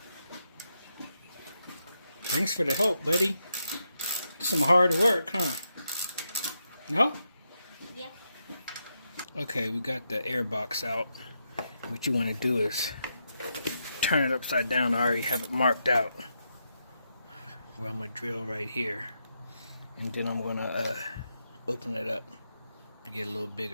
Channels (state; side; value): inverted; both; correlation -0.83